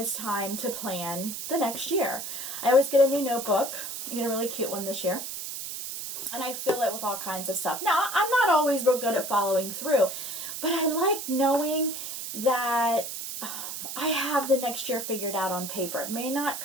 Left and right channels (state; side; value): noise; right; hiss, 6 dB below the sound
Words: time to plan the next year. I always get a new notebook. I get a really cute one this year. And I fill it with all kinds of stuff. Now, I'm not always real good at following through, but I like knowing that I have the next year figured out on paper. It may not